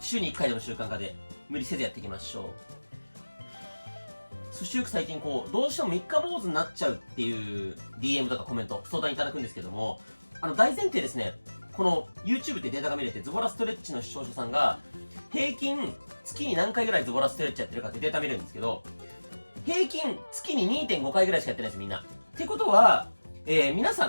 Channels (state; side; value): inverted; both; correlation -1.00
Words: に1回でも習慣化で、無理せずやっていきましょう。そしてよく最近どうしても三日坊主になっちゃうっていう DM とかコメント、相談いただくんですけども、大前提ですね、この YouTube ってデータが見れて、ズボラストレッチの視聴者さんが、平均月に何回ぐらいズボラストレッチやってるかってデータ見れるんですけど、平均月に 2.5 回ぐらいしかやってないです、みんな。ってことは、皆さ